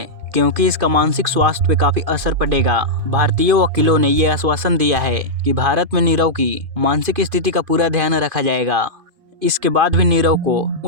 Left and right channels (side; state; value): left; late; 2.5 ms